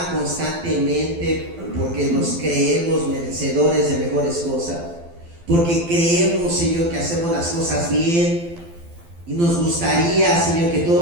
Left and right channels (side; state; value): left; late; 12 ms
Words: constantemente porque nos creemos merecedores de mejores cosas, porque creemos, Señor, que hacemos las cosas bien y nos gustaría, Señor, que